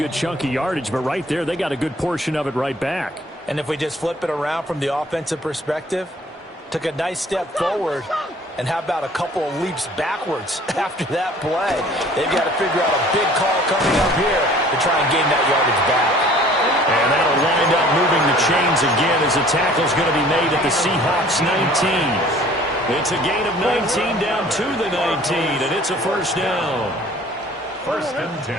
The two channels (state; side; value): normal; both; correlation 0.52